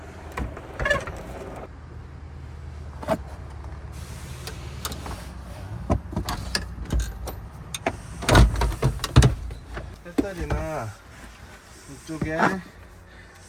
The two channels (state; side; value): identical; both; correlation 1.00